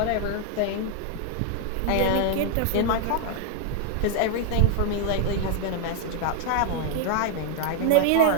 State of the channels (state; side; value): different; both; correlation 0.00